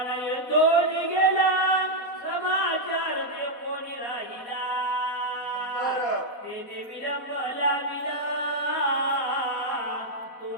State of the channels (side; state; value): right; late; 4.1 ms